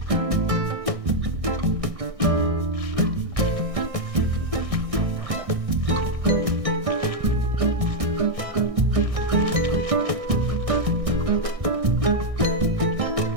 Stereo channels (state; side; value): late; left; 1.6 ms